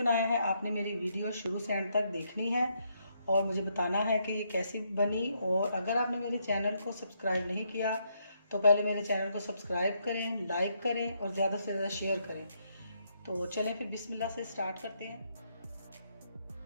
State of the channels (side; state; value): both; inverted; correlation -0.76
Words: है, आपने मेरी वीडियो शुरू से एंड तक देखनी है और मुझे बताना है कि ये कैसी बनी। और अगर आपने मेरे चैनल को सब्सक्राइब नहीं किया तो पहले मेरे चैनल को सब्सक्राइब करें, लाइक करें और ज़्यादा से ज़्यादा शेयर करें। तो चलें फिर बिस्मिल्लाह से स्टार्ट करते हैं।